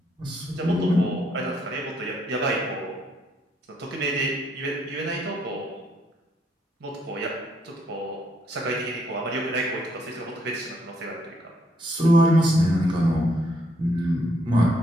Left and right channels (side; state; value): both; normal; correlation 0.72